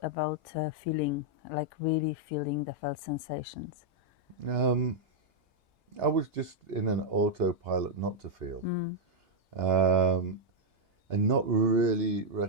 about feeling, like really feeling the felt sensations? I was just in an autopilot not to feel, and not really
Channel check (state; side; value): normal; both; correlation -0.03